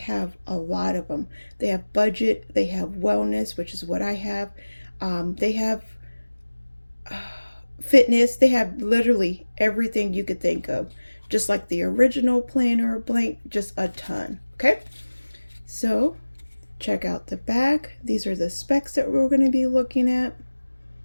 a lot of them. They have budget, they have wellness, which is what I have. They have fitness, they have literally everything you could think of, just like the original planner blank, just a ton. Okay, so check out the back. These are the specs that we're going to be looking at.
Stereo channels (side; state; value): both; inverted; correlation -1.00